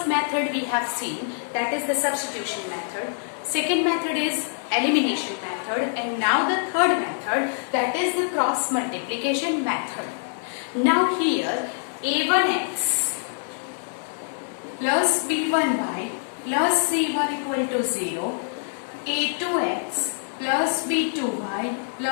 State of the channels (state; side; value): silent; right; digital silence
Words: method we have seen, that is the substitution method. Second method is elimination method, and now the third method, that is the cross multiplication method. Now here a1x plus b1y plus c1 equal to 0, a2x plus b2y